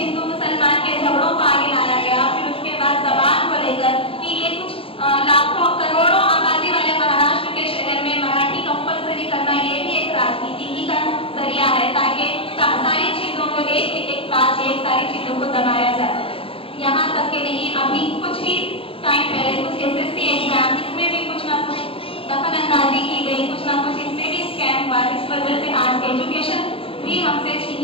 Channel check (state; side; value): late; right; 0.27 ms